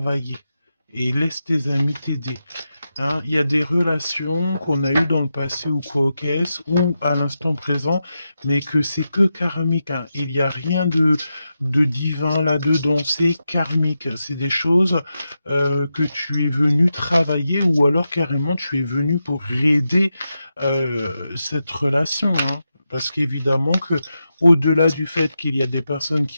Et laisse tes amis t'aider. Hein, il y a des relations qu'on a eues dans le passé ou quoi qu'est-ce, ou à l'instant présent, mais que c'est que karmique, hein. Il n'y a rien de divin là-dedans, c'est karmique. C'est des choses que tu es venu travailler ou alors carrément tu es venu pour aider cette relation, hein. Parce qu'évidemment que, au-delà du fait qu'il y a des personnes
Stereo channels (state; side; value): inverted; both; correlation -0.89